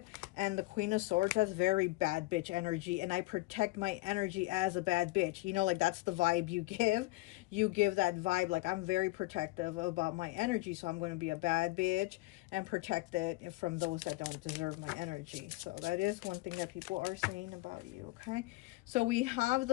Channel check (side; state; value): right; quieter; 21.9 dB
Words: and the Queen of Swords, has very bad bitch energy, and I protect my energy as a bad bitch, you know, like that's the vibe you give. You give that vibe, like I'm very protective about my energy, so I'm going to be a bad bitch and protect it from those that don't deserve my energy. So that is one thing that people are saying about you, okay? So we have